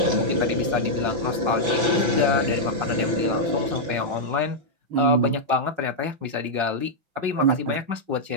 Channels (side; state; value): left; late; 5.9 ms